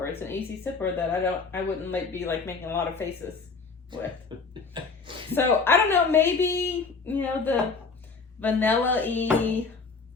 It's an easy sipper that I wouldn't be making a lot of faces with. So I don't know. Maybe the vanilla-y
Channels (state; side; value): quieter; right; 4.7 dB